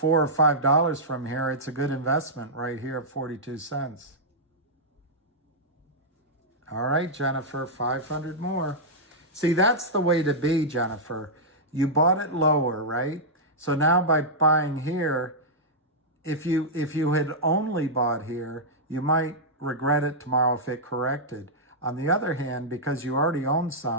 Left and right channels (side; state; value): both; normal; correlation -0.09